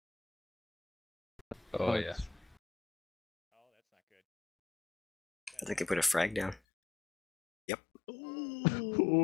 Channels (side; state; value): right; drops out; at 6.6 s